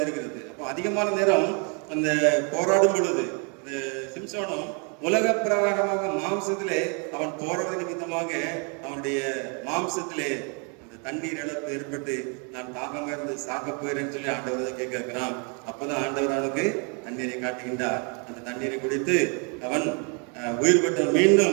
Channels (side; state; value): left; quieter; 36.6 dB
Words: அப்போ அதிகமான நேரம் அந்த போராடும் பொழுது இந்த சிம்சோனும் உலக பிரகாரமாக மாம்சத்திலே அவன் போராட நிமித்தமாக அவனுடைய மாம்சத்திலே அந்த தண்ணீர் இழப்பு ஏற்பட்டு நான் தாகமாக இருந்து சாக போயிறேன்னு சொல்லி ஆண்டவர் தான் கேட்கிறான். அப்பதான் ஆண்டவர் அவனுக்கு தண்ணீரை காட்டுகின்றார். அந்த தண்ணீரை குடித்து அவன் உயிர் பெற்றவன்,